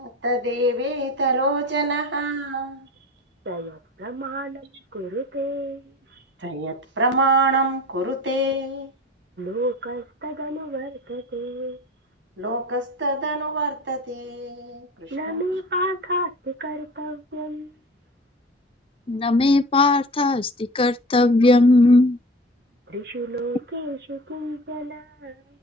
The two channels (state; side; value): normal; both; correlation 0.37